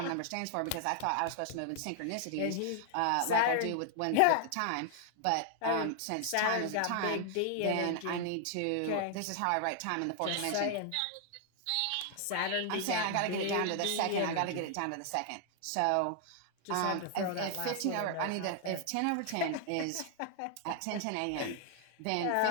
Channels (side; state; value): both; different; correlation 0.00